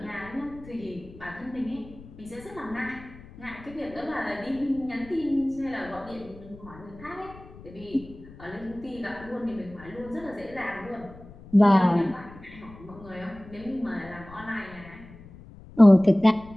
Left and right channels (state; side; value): noise; left; rumble, 19 dB below the sound